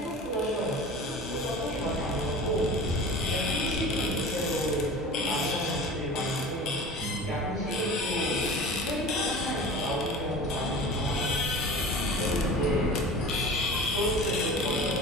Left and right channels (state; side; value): normal; both; correlation 0.37